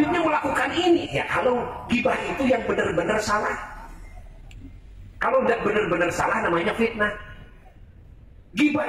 melakukan ini. Ya, kalau ghibah itu yang benar-benar salah. Kalau tidak benar-benar salah, namanya fitnah. Ghibah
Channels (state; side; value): identical; both; correlation 1.00